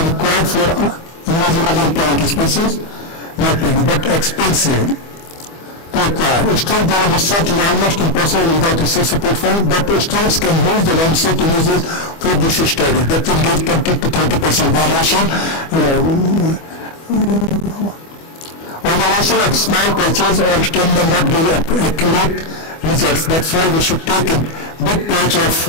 required for invasive plant species, but expensive to acquire. Still, the research is almost impossible without research support fund, but students can use the landscape images for this study. That will give 20 to 30% variation. Observation of small patches or stem may not give accurate results. That's why we should take a big patch of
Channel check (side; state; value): right; late; 25 ms